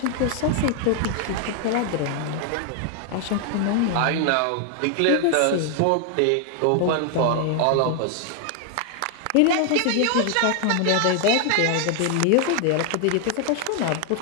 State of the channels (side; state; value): both; different; correlation 0.00